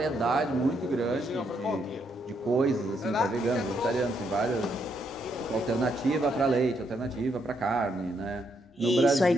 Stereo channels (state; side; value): normal; both; correlation 0.76